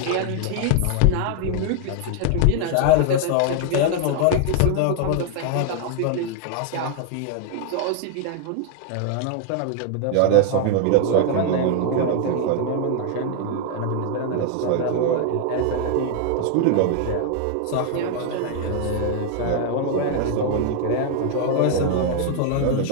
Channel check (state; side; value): different; both; correlation 0.00